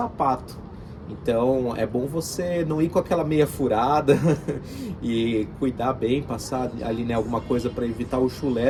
Então é bom você não ir com aquela meia furada e cuidar bem, passar ali, né, alguma coisa para evitar o chulé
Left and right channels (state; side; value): identical; both; correlation 1.00